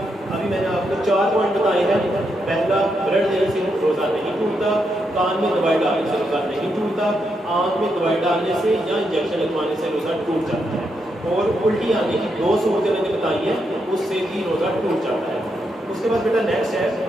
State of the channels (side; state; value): both; normal; correlation 0.81